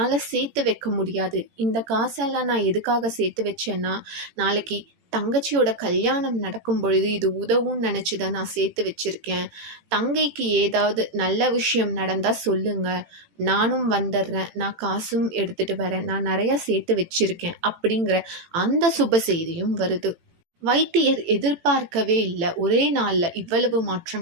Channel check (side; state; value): left; late; 18 ms